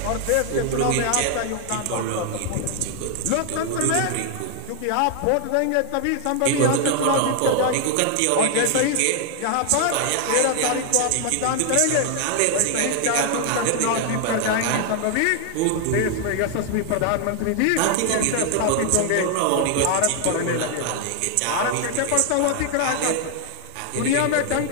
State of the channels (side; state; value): both; different; correlation 0.00